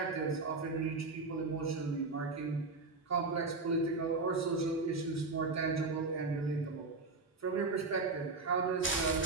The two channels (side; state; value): left; quieter; 3.8 dB